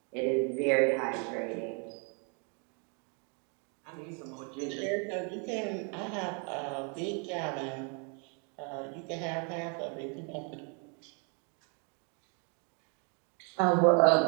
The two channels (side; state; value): left; quieter; 37.3 dB